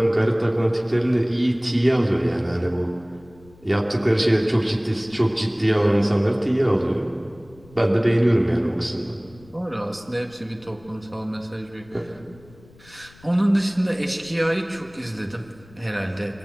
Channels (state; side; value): noise; left; rumble, 25 dB below the sound